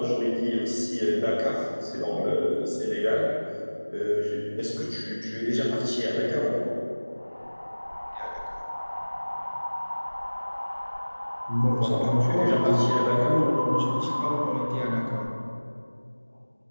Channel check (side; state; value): both; inverted; correlation -1.00